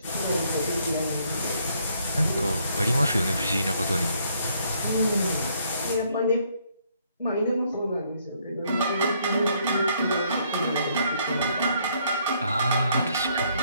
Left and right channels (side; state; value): both; inverted; correlation -0.69